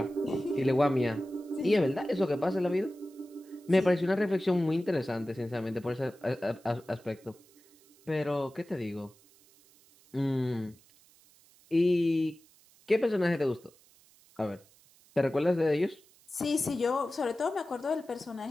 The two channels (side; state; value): right; noise; hiss, 28 dB below the sound